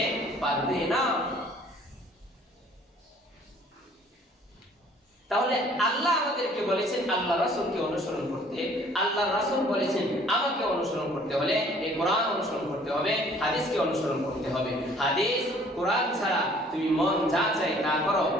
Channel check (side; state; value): both; normal; correlation 0.56